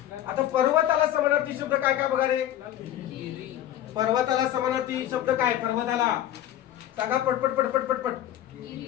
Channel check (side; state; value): right; quieter; 12.3 dB